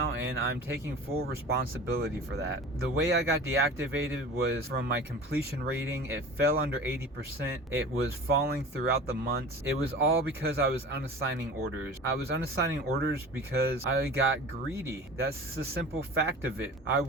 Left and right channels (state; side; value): normal; both; correlation 0.38